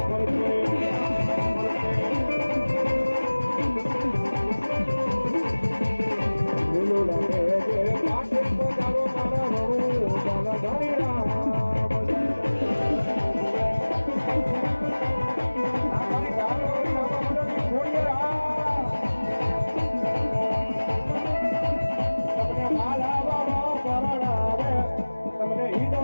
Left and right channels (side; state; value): both; inverted; correlation -1.00